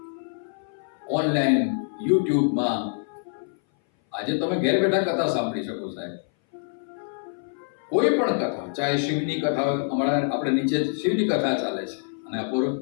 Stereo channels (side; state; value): right; silent; 59 dB below the other